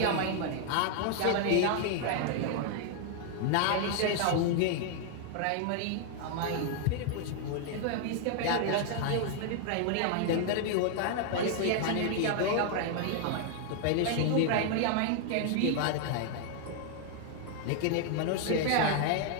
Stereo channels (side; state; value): both; different; correlation 0.00